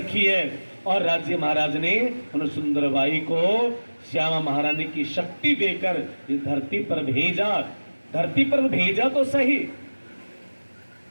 है। और राज्य महाराज ने उन सुंदरबाई को श्यामा महारानी की शक्ति देकर इस धरती पर भेजा। धरती पर भेजा तो सही,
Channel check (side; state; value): both; inverted; correlation -1.00